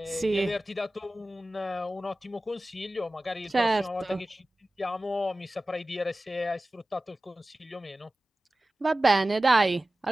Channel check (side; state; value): both; normal; correlation 0.96